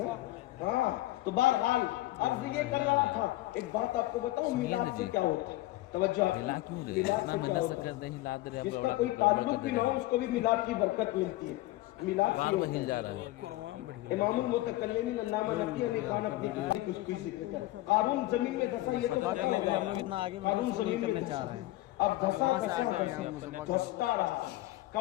ہاں تو بہرحال عرض یہ کر رہا تھا, ایک بات آپ کو بتاؤں میلاد سے کیا ہوتا ہے. توجہ آپ, میلاد سے کیا ہوتا ہے؟ جس کا کوئی تعلق بھی نہ ہو اس کو بھی میلاد کی برکت ملتی ہے. میلاد سے امام المتکلمین علامہ نقی علی خان اپنی کتاب کچھ بھی ذکر کرتے. قارون زمین میں دھسا, یہ تو پتہ ہے قارون زمین میں دھسا. اب دھستا رہا.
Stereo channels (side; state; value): right; quieter; 17.6 dB